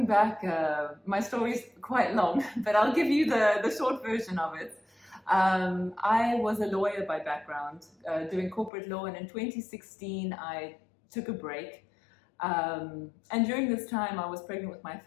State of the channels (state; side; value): drops out; right; at 8.7 s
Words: back, my story is quite long, but I'll give you the short version of it. I was a lawyer by background, doing corporate law, and in 2016 I took a break. And during this time I was pregnant with my